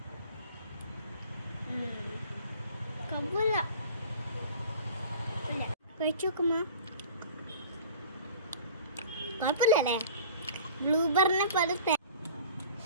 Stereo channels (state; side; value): inverted; both; correlation -0.44